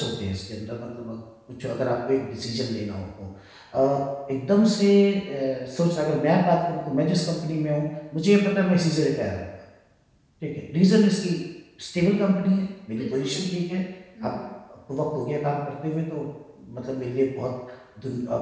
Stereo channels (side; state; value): both; identical; correlation 1.00